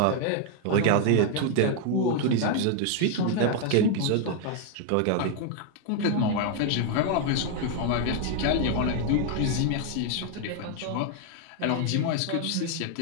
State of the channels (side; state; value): both; different; correlation 0.00